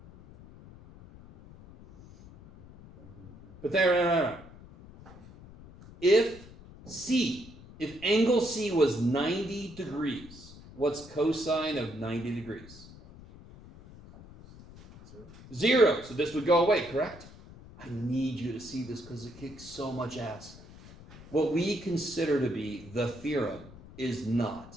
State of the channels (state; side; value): noise; left; rumble, 19 dB below the sound